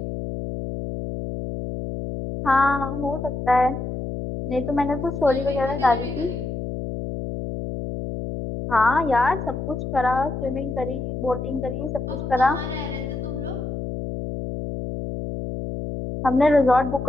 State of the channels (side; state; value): left; noise; hum, 5 dB below the sound